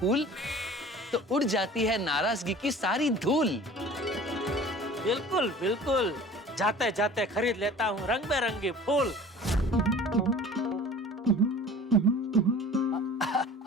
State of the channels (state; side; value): normal; both; correlation 0.43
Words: तो उड़ जाती है नाराजगी की सारी धूल। बिल्कुल बिल्कुल, जाते जाते खरीद लेता हूँ रंग बिरंगी फूल।